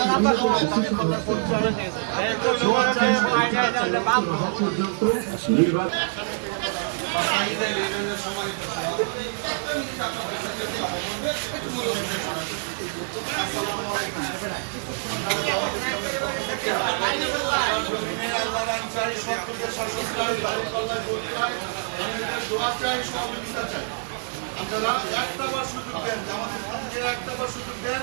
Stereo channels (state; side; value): silent; left; digital silence